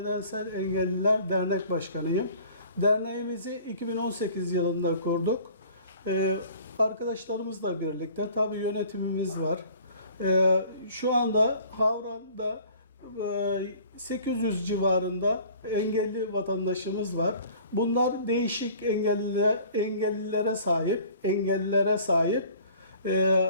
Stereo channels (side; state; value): both; inverted; correlation -0.50